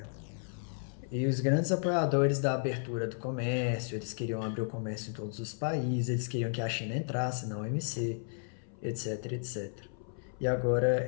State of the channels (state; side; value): silent; right; 56 dB below the other